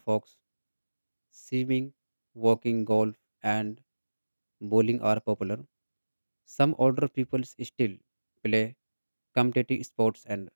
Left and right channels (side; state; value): both; inverted; correlation -1.00